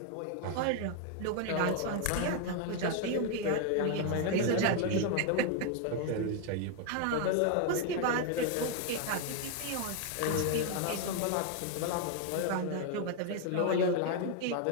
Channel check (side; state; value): both; different; correlation 0.01